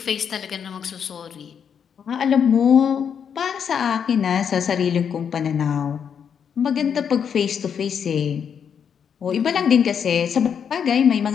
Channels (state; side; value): quieter; right; 7.5 dB